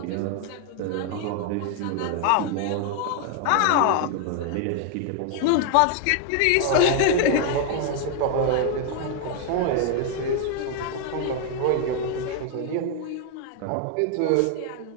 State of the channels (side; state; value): both; different; correlation 0.00